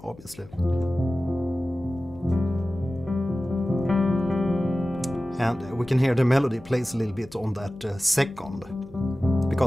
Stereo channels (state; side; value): noise; left; hum, 21 dB below the sound